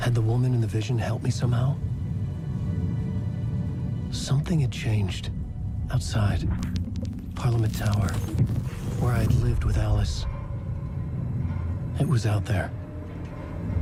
the woman in the vision helped me somehow? Something had changed. Outside. Parliament Tower. Where I'd lived with Alice. It was out there.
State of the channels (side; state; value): both; identical; correlation 1.00